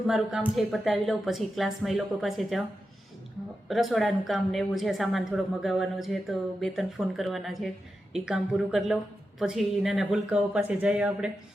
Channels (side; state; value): both; normal; correlation 0.90